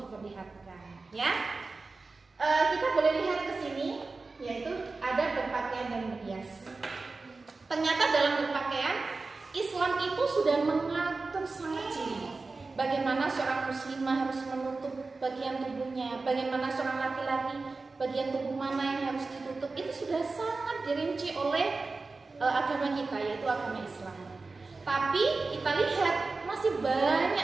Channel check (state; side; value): quieter; left; 3.8 dB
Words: diperlihatkan. Ya, kita boleh lihat ke sini, yaitu ada berpakaian dan berhias. Ternyata dalam berpakaian, Islam itu sudah mengatur sangat jeli. Bagaimana seorang muslimah harus menutup bagian tubuhnya, bagaimana seorang laki-laki bagian tubuh mana yang harus ditutup, itu sudah sangat dirinci oleh agama kita, yaitu agama Islam. Tapi kita lihat masih